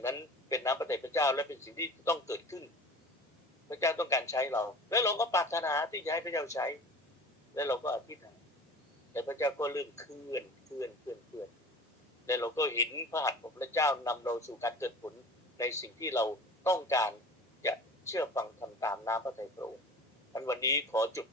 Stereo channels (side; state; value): both; normal; correlation 0.39